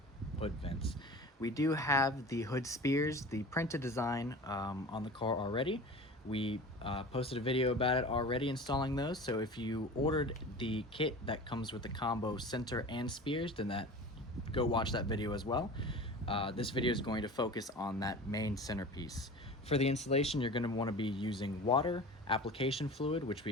hood vents. We do have the hood spears, the printed design on the car already. We posted a video about it already installing those, so if you ordered the kit that comes with the combo center and spears, then go watch that video as well. This video is going to focus on that main centerpiece. For the installation, you're going to want to be using water, application fluid, which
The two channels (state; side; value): normal; both; correlation 0.36